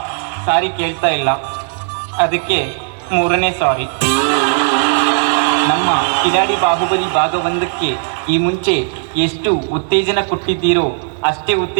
ಸಾರಿ ಕೇಳ್ತಾ ಇಲ್ಲ, ಅದಕ್ಕೆ ಮೂರನೇ ಸಾರಿ. ನಮ್ಮ ಕಿಲಾಡಿ ಬಾಹುಬಲಿ ಭಾಗ 1ಕ್ಕೆ ಈ ಮುಂಚೆ ಎಷ್ಟು ಉತ್ತೇಜನ ಕೊಟ್ಟಿದ್ದೀರೋ ಅಷ್ಟೇ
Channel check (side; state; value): left; silent; digital silence